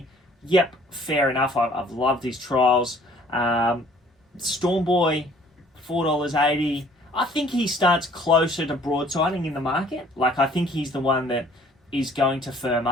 Yep, fair enough. I've loved his trials. Stormboy, $4.80. I think he starts closer to broadsiding in the market. Like, I think he's the one that is going to firm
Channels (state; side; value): normal; both; correlation 0.56